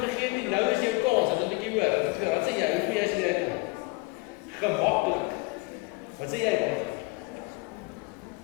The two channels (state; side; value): quieter; right; 25.5 dB